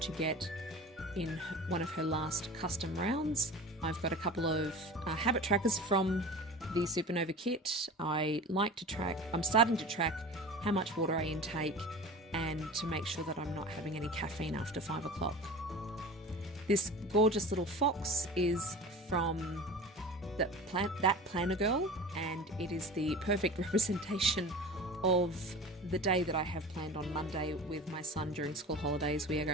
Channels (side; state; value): both; normal; correlation 0.36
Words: get in one of her last custom rounds. I've got a couple of habit trackers from the Supernova kit. I'm starting to track how much water I intake and to make sure that I'm not having any caffeine after 5 o'clock. This gorgeous little fox is from that planner girl, and it is the perfect representation of the day that I have planned on Monday with my son during school holidays. We are